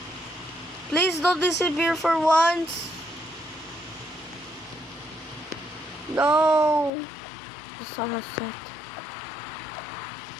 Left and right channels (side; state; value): right; drops out; at 6.9 s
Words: Please don't disappear for once. No. The sun has set.